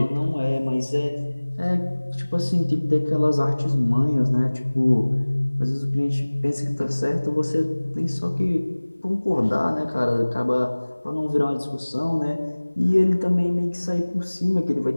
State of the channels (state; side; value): inverted; both; correlation -1.00